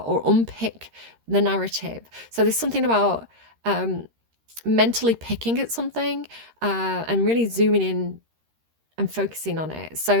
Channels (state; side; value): late; left; 13 ms